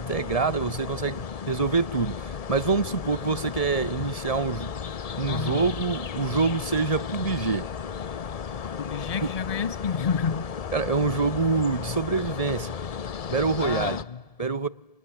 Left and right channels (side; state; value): right; late; 1.7 ms